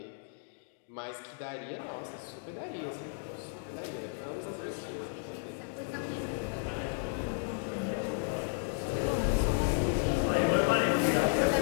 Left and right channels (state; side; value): silent; right; digital silence